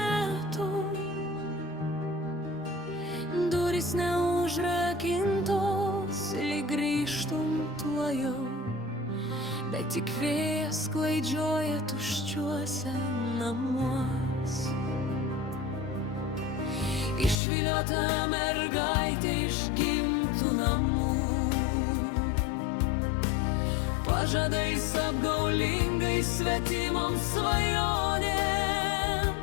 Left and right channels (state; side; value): drops out; right; at 17.4 s